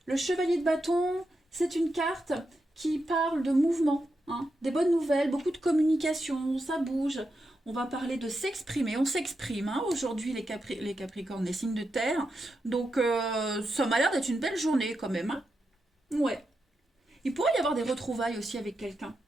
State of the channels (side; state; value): both; normal; correlation 0.87